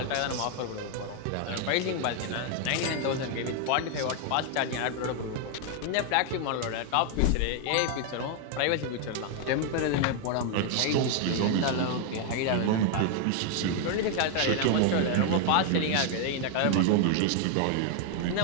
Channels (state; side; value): different; both; correlation 0.01